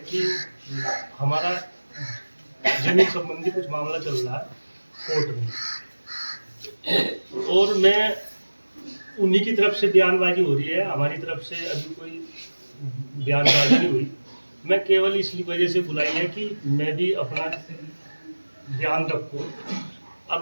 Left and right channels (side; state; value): both; inverted; correlation -1.00